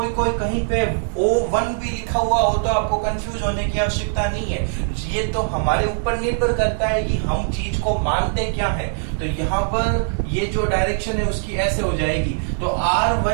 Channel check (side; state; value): left; silent; 65 dB below the other